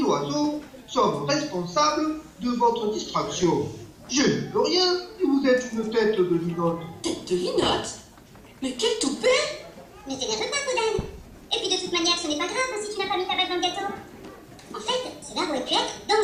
sommes responsables de votre distraction. Je ne peux rien si vous êtes une tête de linotte. Tête de linotte? Mais quel toupet! Ne t'énerve pas, Podane. Et puis de toute manière, ce n'est pas grave si tu n'as pas mis ta bague dans le gâteau. En fait, cela aurait pu être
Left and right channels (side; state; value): both; identical; correlation 1.00